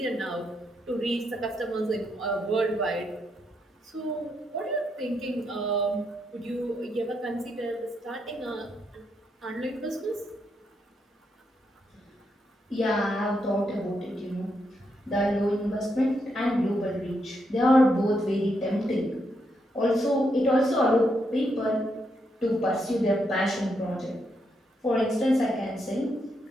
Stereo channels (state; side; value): normal; both; correlation 0.79